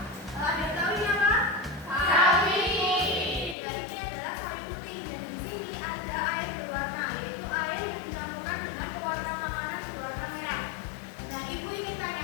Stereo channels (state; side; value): drops out; right; at 3.6 s